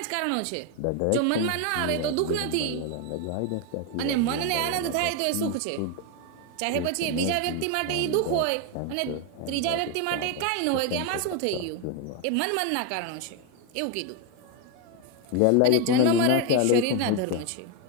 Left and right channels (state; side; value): different; both; correlation 0.01